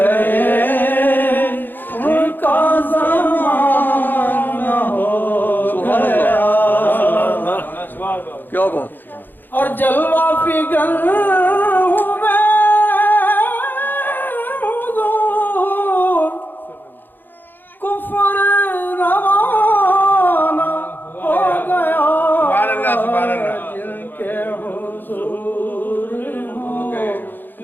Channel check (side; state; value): right; late; 0.091 ms